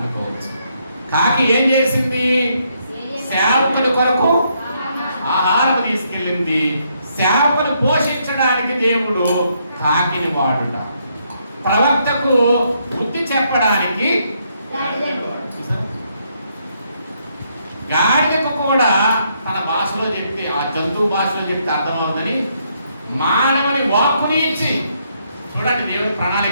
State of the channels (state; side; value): inverted; both; correlation -0.74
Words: కాకి ఏం చేసింది? సేవకుని కొరకు ఆహారం తీసుకెళ్ళింది. సేవకుని పోషించడానికి దేవుడు కాకిని వాడుట, ప్రవక్తకు బుద్ధి చెప్పడానికి గాడిదకు కూడా తన భాషలో చెప్తే, ఆ జంతువు భాషలో చెప్తే అర్థమవుతుందని మానవుని వాక్కుని ఇచ్చి, చూడండి దేవుని